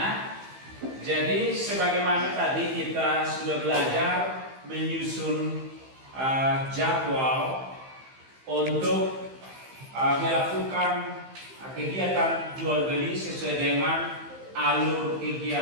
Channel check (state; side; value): late; left; 15 ms